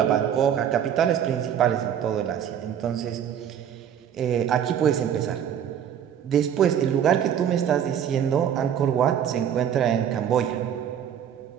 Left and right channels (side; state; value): left; quieter; 9.2 dB